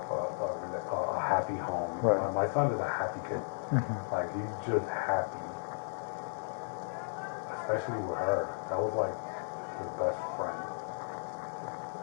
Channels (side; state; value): right; silent; 55 dB below the other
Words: a happy home. Right. My son is a happy kid. Mm-hmm. Like, he's just happy. Especially with her. That was like his best friend.